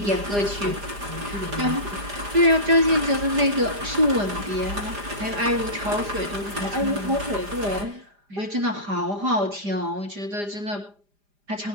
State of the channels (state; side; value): late; left; 4.9 ms